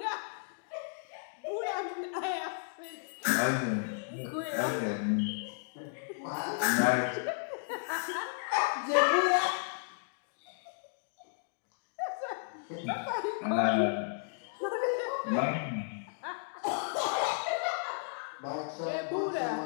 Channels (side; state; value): right; silent; digital silence